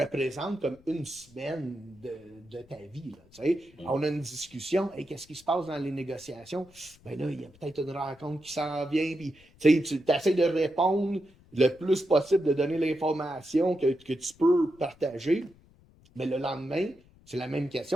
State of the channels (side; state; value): left; noise; rumble, 27 dB below the sound